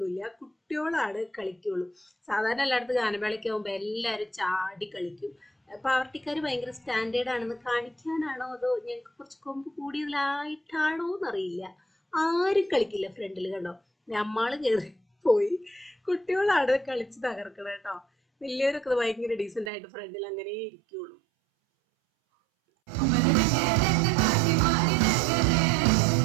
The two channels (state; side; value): drops out; left; at 19.7 s